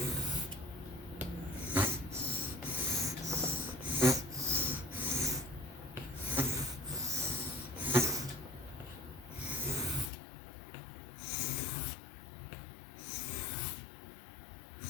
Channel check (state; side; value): drops out; right; at 10.1 s